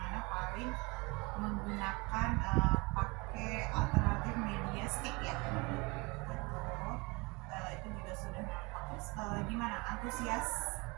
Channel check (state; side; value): quieter; left; 26.7 dB